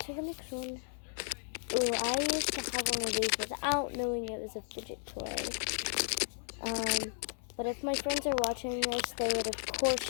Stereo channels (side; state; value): right; silent; 55 dB below the other